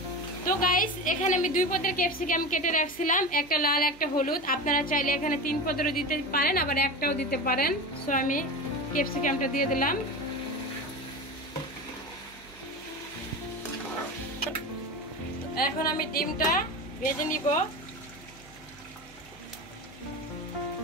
তো গাইস এখানে আমি 2 পদের ক্যাপসিকাম কেটে রাখছিলাম, একটা লাল একটা হলুদ। আপনারা চাইলে এখানে 3 পদেরও দিতে পারেন, আবার একটাও দিতে পারেন। সো আমি ক্যাপসিকামটা দিয়ে দিলাম। এখন আমি ডিমটা ভেজে নিব।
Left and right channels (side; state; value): right; noise; hum, 24 dB below the sound